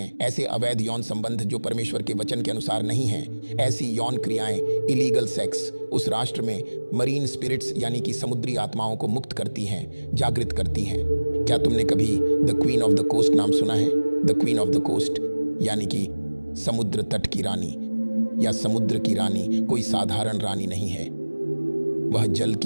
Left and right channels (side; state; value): both; inverted; correlation -1.00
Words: ऐसे अवैध यौन संबंध जो परमेश्वर के वचन के अनुसार नहीं हैं। ऐसी यौन क्रियाएं, इलीगल सेक्स, उस राष्ट्र में मरीन स्पिरिट्स यानी कि समुद्री आत्माओं को मुक्त करती हैं, जागृत करती हैं। क्या तुमने कभी the queen of the coast नाम सुना है? The queen of the coast यानी कि समुद्र तट की रानी या समुद्र की रानी कोई साधारण रानी नहीं है। वह जल